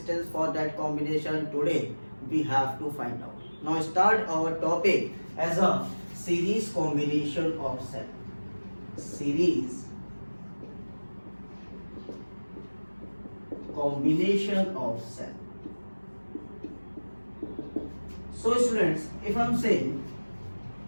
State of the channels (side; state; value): both; inverted; correlation -1.00